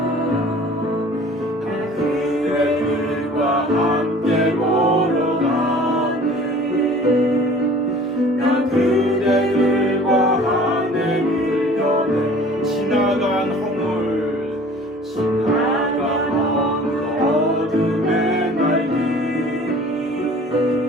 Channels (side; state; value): both; normal; correlation 0.47